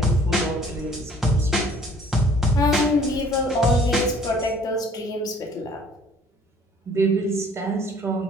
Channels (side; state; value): both; normal; correlation 0.55